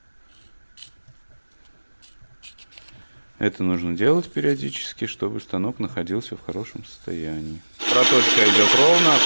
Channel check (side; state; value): both; inverted; correlation -1.00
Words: Это нужно делать периодически, чтобы станок находился в хорошем состоянии. Проточка идет ровно,